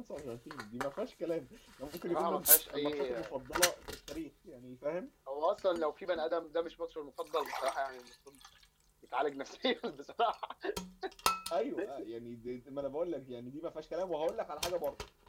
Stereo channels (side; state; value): both; identical; correlation 1.00